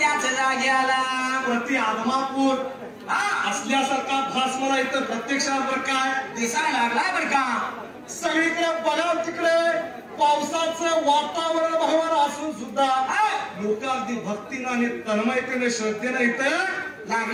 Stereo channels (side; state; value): both; identical; correlation 1.00